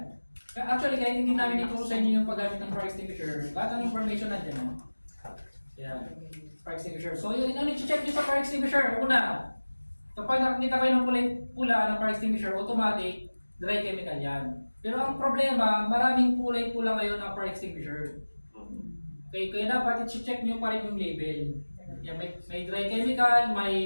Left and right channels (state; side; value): inverted; both; correlation -1.00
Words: Actually, kahit hindi namin ituro sa inyo yung paggamit ng fire extinguisher, lahat ng information nandiyan. No? Yan, fire extinguisher. So yun, ano i-check nyo sa fire extinguisher? Una, kapag nakikita kayo ng kulay pula ng fire extinguisher, automatic, dry chemical yan. Pero ang problema, maraming kulay pula ngayon ng fire extinguisher. Okay, kaya dapat i-check nyo pa rin yung label. Yan, may dry chemical,